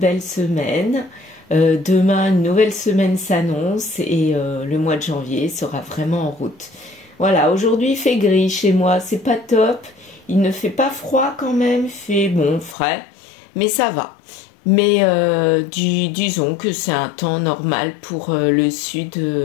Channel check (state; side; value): drops out; right; at 12.8 s